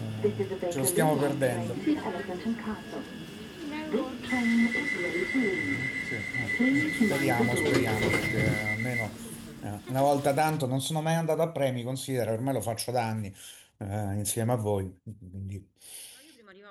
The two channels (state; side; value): identical; both; correlation 1.00